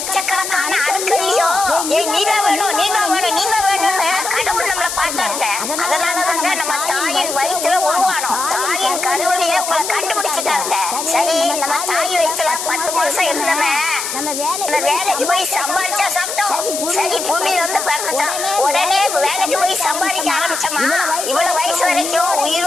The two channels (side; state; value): left; noise; hiss, 5 dB below the sound